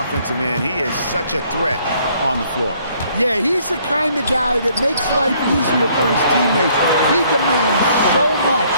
end, he is such a threat on the floor. Yeah, he's the kind of guy that makes life easier for his teammates. He demands so much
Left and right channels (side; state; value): both; inverted; correlation -0.64